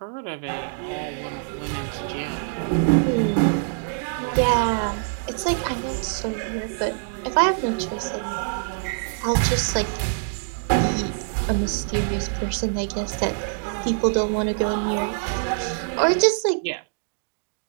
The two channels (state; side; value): silent; left; digital silence